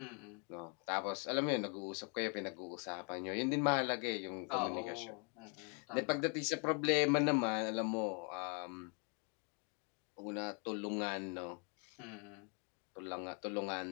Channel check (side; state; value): right; quieter; 37.0 dB